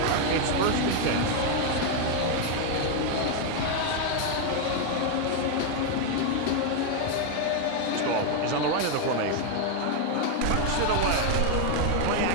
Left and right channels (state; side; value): different; both; correlation 0.01